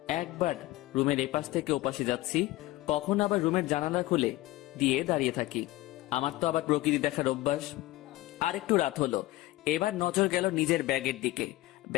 একবার রুমের এপাশ থেকে ওপাশে যাচ্ছি, কখন আবার রুমের জানালা খুলে দিয়ে দাঁড়িয়ে থাকি। আমার তো আবার প্রকৃতি দেখার অভ্যাস। আর একটু রাত হলো। এবার নজর গেল নিজের ব্যাগের দিকে।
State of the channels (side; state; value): right; quieter; 17.7 dB